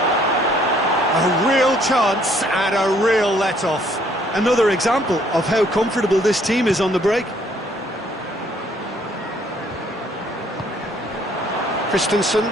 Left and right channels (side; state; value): both; normal; correlation 0.64